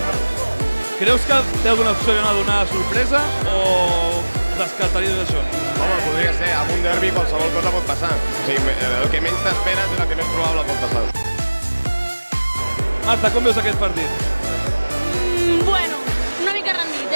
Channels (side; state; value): both; inverted; correlation -1.00